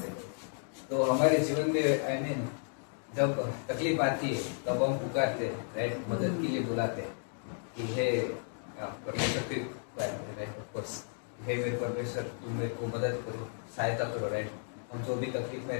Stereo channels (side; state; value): right; silent; 55 dB below the other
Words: तो हमारे जीवन में आई मीन जब तकलीफ आती है तब हम पुकारते, राइट, मदद के लिए बुलाते कि हे परमेश्वर, राइट, ऑफ कोर्स, हे मेरे परमेश्वर, तुम मेरे को मदद करो, सहायता करो, राइट। हम जो भी तकलीफ में